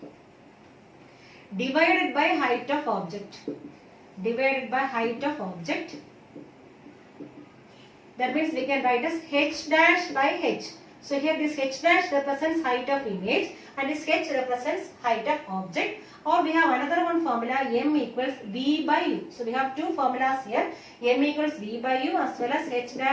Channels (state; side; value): identical; both; correlation 1.00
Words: divided by height of object, that means we can write as h dash by h. So here this h dash represents height of image and this h represents height of object. Or we have another one formula, M equals V by U. So we have two formulas here, M equals V by U as well as h